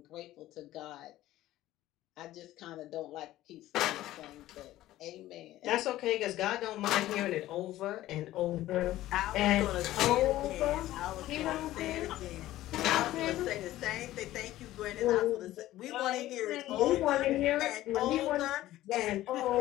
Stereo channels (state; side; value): quieter; right; 15.1 dB